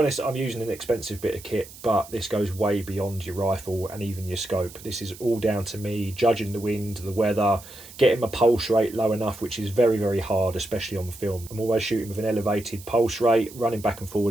I'm using an expensive bit of kit, but this goes way beyond your rifle and even your scope. This is all down to me judging the wind, the weather, getting my pulse rate low enough, which is very, very hard, especially on film. I'm always shooting with an elevated pulse rate, running back and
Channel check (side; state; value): right; noise; hiss, 18 dB below the sound